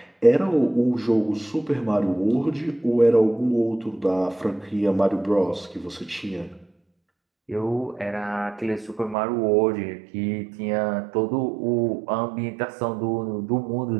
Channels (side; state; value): left; drops out; at 9.2 s